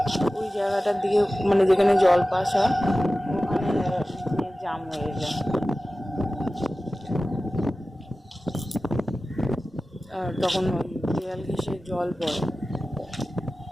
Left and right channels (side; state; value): both; normal; correlation 0.96